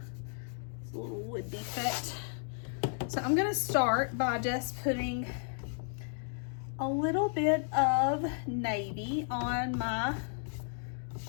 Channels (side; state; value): right; silent; 55 dB below the other